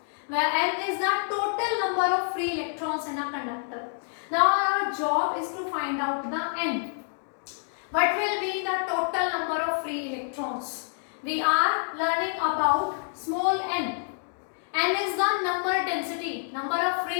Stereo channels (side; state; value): right; silent; digital silence